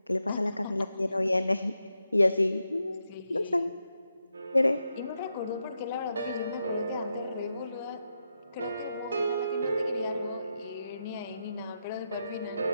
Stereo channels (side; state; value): both; inverted; correlation -0.85